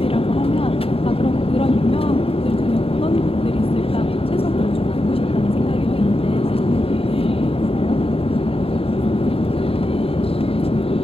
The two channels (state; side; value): late; right; 0.27 ms